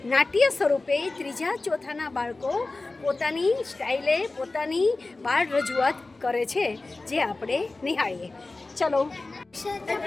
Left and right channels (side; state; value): right; quieter; 3.3 dB